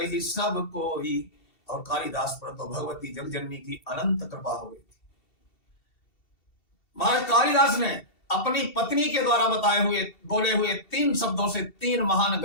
ही सब कोई। और कालिदास पर तो भगवती जगजननी की अनंत कृपा हो गई थी। महाराज कालिदास ने अपनी पत्नी के द्वारा बताए हुए बोले हुए 3 शब्दों से 3 महान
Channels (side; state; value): right; late; 2.7 ms